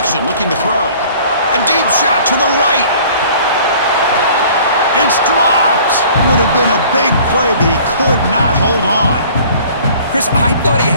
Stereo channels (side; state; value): both; inverted; correlation -0.51